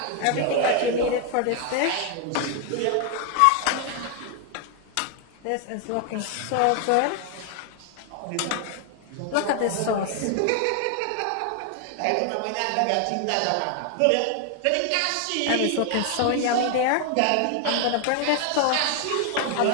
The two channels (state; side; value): different; both; correlation 0.00